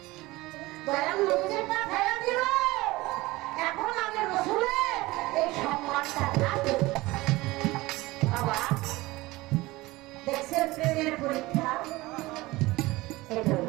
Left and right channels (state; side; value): quieter; left; 20.2 dB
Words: দয়াল নবীকে পাঠাইয়া দিল। এখন আমি রসুলের এই সম্মানটা রাখি। বাবা দেখছেন প্রেমের পরীক্ষা, এটা